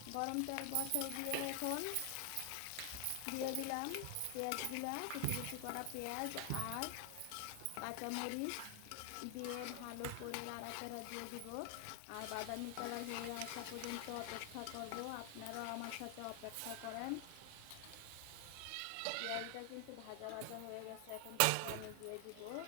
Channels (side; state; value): both; different; correlation 0.00